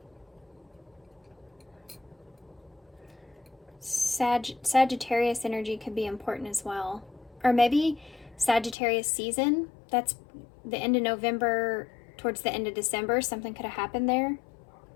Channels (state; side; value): drops out; right; at 8.8 s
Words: Sagittarius energy could be important as well. Or maybe Sagittarius season. That's the end of November, towards the end of December. Something could have happened there.